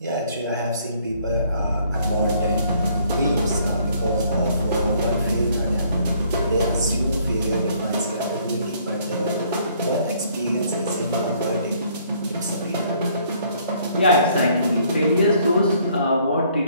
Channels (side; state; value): both; inverted; correlation -0.63